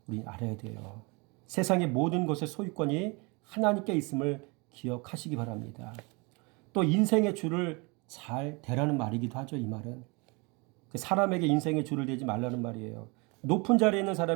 우리 알아야 돼요. 세상의 모든 것의 소유권이 하나님께 있음을 기억하시기 바랍니다. 또 인생의 줄을 잘 대라는 말이기도 하죠. 이 말은 사람에게 인생의 줄을 대지 말라는 말이에요. 높은 자리에 있는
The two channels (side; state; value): left; quieter; 29.1 dB